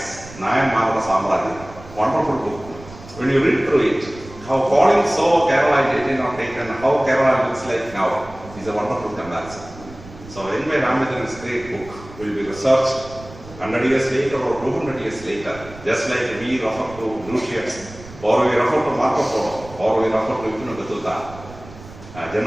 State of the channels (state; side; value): noise; right; rumble, 18 dB below the sound